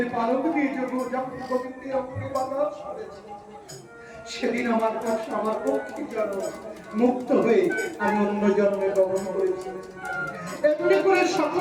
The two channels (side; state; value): both; identical; correlation 1.00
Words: পালক দিয়ে যখন গোবিন্দের অঙ্গে বাতাস করেছে, সেদিন আমার কষ্ট আমার পক্ষী জন্ম মুক্ত হয়ে আমি অন্য জন্মে গমন করেছি। এমনি করে